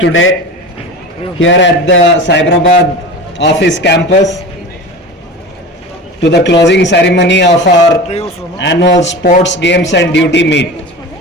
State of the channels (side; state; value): both; normal; correlation 0.32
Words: here at the Cyberabad office campus to the closing ceremony of our annual sports games and duty meet.